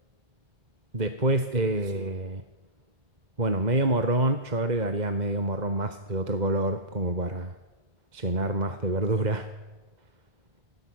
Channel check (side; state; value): left; late; 2.0 ms